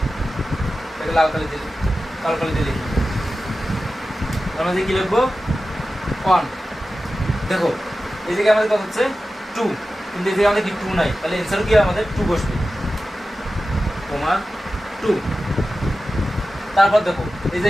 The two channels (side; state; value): both; normal; correlation 0.94